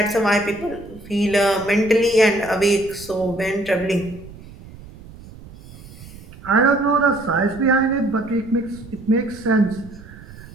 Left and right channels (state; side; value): noise; right; rumble, 18 dB below the sound